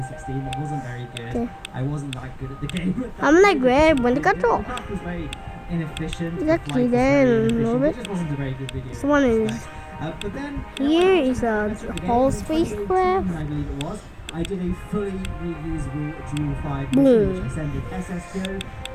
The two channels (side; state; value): both; identical; correlation 1.00